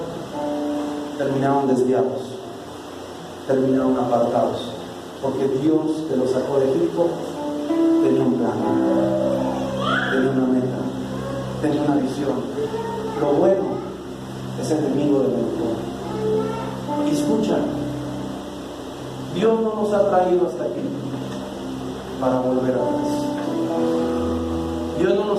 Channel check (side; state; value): both; identical; correlation 1.00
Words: terminaron desviados, terminaron apartados, porque Dios, que los sacó de Egipto, tenía un plan, tenía una meta, tenía una visión. Lo bueno es enemigo de lo mejor. Y escucha, Dios no nos ha traído hasta aquí para volver atrás. Dios no